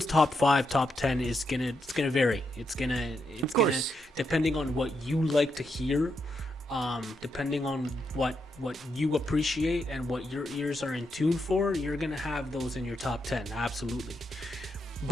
top 5, top 10 is gonna vary. It's gonna depending on what you like to hear, depending on what you appreciate and what your ears are in tune for. You're gonna have those in your top 10, absolutely.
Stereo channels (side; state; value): both; normal; correlation 0.82